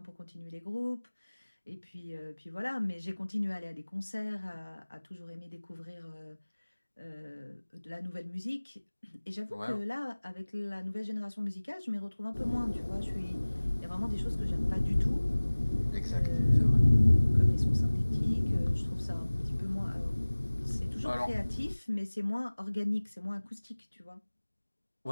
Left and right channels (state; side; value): inverted; both; correlation -1.00